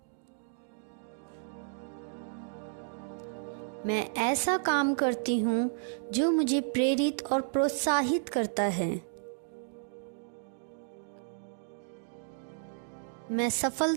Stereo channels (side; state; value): left; silent; digital silence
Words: मैं ऐसा काम करती हूँ जो मुझे प्रेरित और प्रोत्साहित करता है। मैं